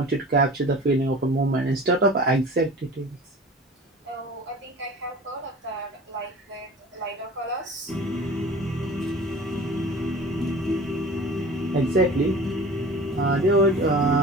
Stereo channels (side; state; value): both; normal; correlation 0.40